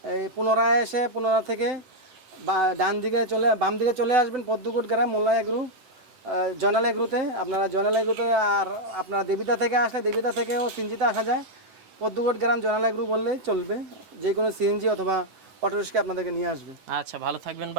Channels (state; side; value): late; left; 11 ms